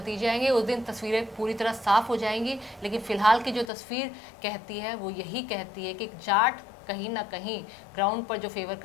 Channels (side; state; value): right; drops out; at 3.7 s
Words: आएंगे, उस दिन तस्वीरें पूरी तरह साफ हो जाएंगी। लेकिन फिलहाल की जो तस्वीर कहती है वो यही कहती है कि जाट कहीं ना कहीं ग्राउंड पर जो फेवर